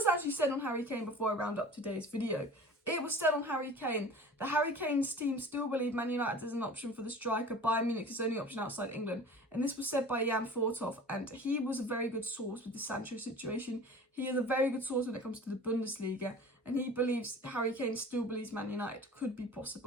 actually said on Harry Kane before I round up today's video? It was said on Harry Kane that Harry Kane's team still believe Man United is an option for the striker. Bayern Munich is the only option outside England. And this was said by Jan Fortov, and he was a very good source with the Sancho situation. He is a very good source when it comes to the Bundesliga, and he believes, Harry Kane still believes Man United could be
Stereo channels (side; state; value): both; normal; correlation 0.40